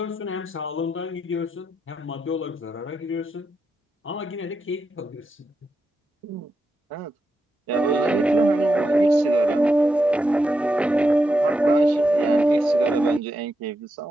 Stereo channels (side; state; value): both; normal; correlation 0.85